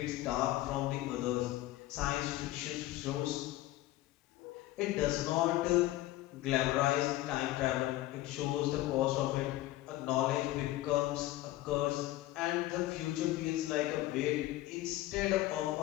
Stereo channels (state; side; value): quieter; right; 16.4 dB